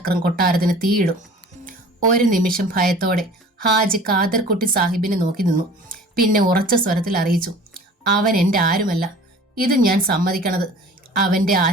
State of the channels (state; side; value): normal; both; correlation 0.45